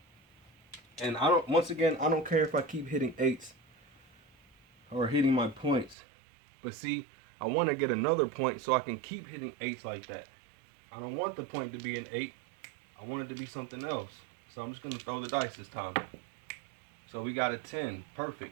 And once again, I don't care if I keep hitting 8s or hitting my points. But see, I want to get another point so I can keep hitting 8s like that. I don't want the point to be an 8. I want it to be something else. So I'm just going to throw the dice this time. So we got a 10.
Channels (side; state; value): left; drops out; at 6.0 s